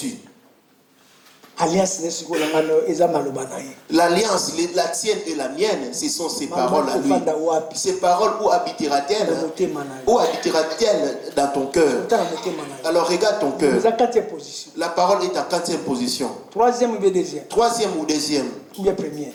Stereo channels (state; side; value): identical; both; correlation 1.00